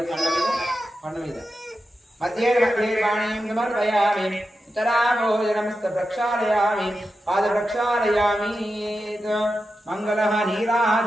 పండ మీద మధ్యే మధ్యే వాణీం సమర్పయామి, ఉత్తరాభోజనమస్త ప్రక్షాళయామి, పాద ప్రక్షాళయామి. మంగళ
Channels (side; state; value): both; normal; correlation 0.90